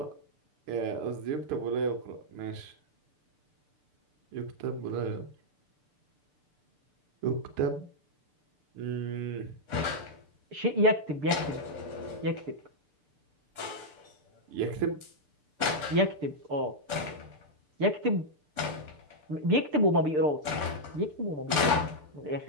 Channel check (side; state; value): left; late; 6.8 ms